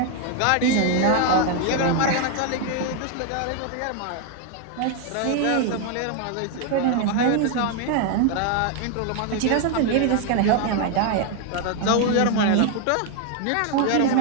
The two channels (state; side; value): different; both; correlation 0.01